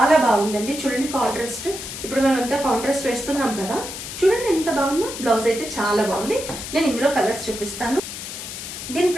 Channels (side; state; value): left; noise; hiss, 9 dB below the sound